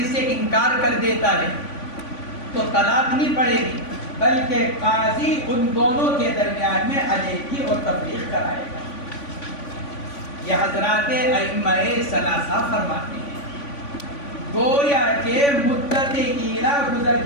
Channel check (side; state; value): right; late; 3.5 ms